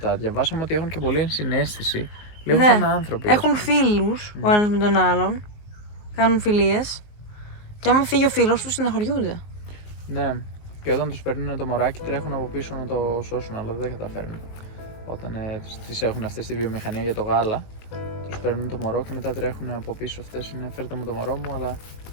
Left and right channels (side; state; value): right; late; 19 ms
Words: Διαβάσαμε ότι έχουν και πολύ ενσυναίσθηση. Λίγο Ναι. σαν άνθρωποι. Έχουν φίλους ο ένας με τον άλλον. Κάνουν φιλίες. Και άμα φύγει ο φίλος τους, συναχωριούνται. Ναι. Και όταν τους παίρνουν το μωράκι, τρέχουν από πίσω να το σώσουν, αλλά δεν καταφέρνουν. Όταν τις έχουν αυτές στη βιομηχανία για το γάλα, τους παίρνουν το μωρό και μετά τρέχουν από πίσω αυτές. Είναι φέρτε μου το μωρό μου, αλλά